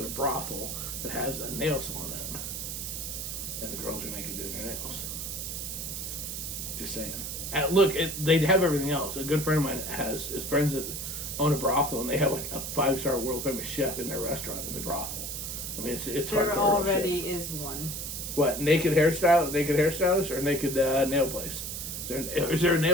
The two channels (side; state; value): right; noise; hiss, 5 dB below the sound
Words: a brothel that has a nail salon in it. And the girls are naked doing their nails. Just saying. Look, they'd have everything else. A good friend of mine has friends that own a brothel, and they have like a 5-star world famous chef in their restaurant in the brothel. I mean, it's there hardcore already shit. is one. What, naked hairstylist or naked nail place? Is there a